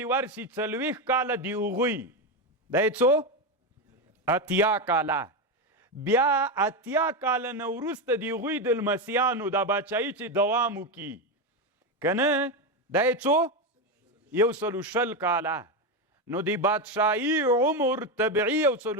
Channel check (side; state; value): both; normal; correlation 0.11